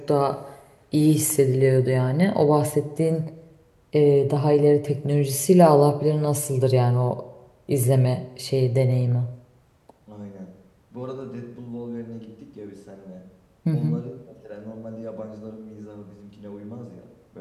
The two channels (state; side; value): identical; both; correlation 1.00